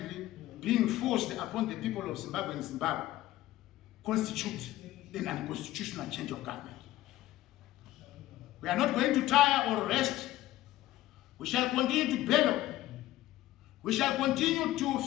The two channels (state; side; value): quieter; right; 15.6 dB